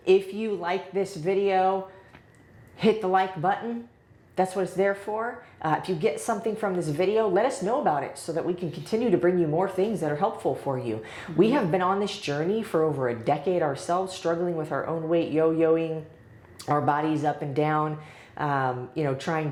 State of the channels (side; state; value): both; identical; correlation 1.00